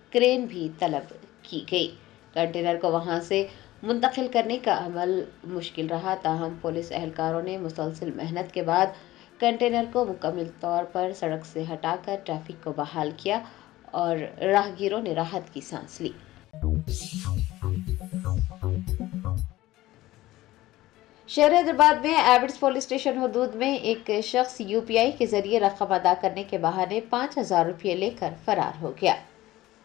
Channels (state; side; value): quieter; right; 16.8 dB